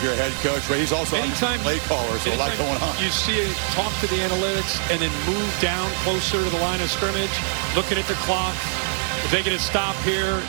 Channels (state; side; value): silent; left; 63 dB below the other